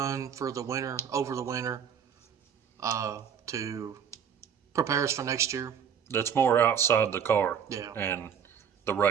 for the winter, over the winter, to prepare us for next year. That's more outside the car Yeah. and the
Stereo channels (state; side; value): quieter; left; 7.8 dB